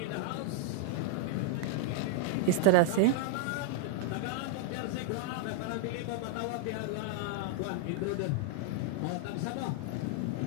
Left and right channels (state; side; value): different; both; correlation -0.01